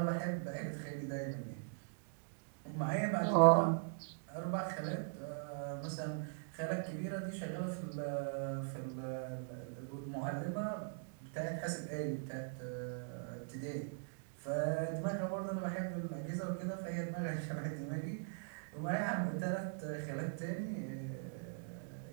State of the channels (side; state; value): left; silent; digital silence